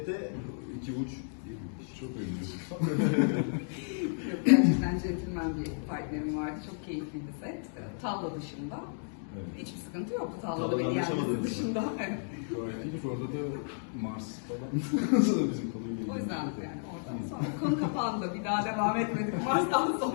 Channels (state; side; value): silent; right; digital silence